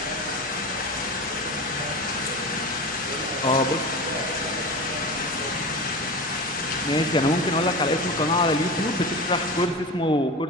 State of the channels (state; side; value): normal; both; correlation 0.28